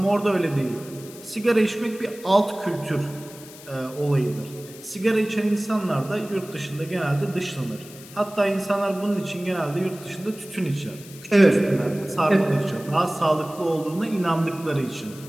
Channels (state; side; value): noise; left; hiss, 18 dB below the sound